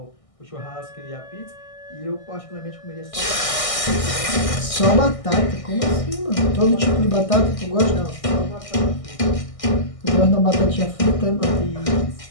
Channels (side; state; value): right; late; 1.6 ms